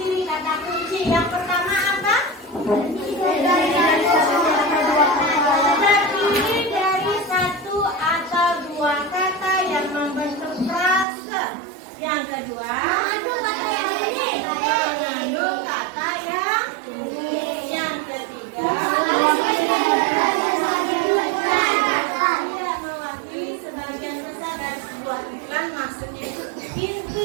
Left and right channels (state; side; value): drops out; left; at 11.1 s